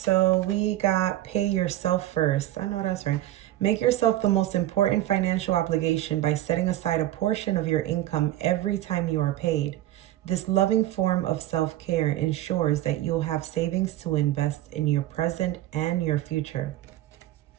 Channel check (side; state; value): left; quieter; 14.2 dB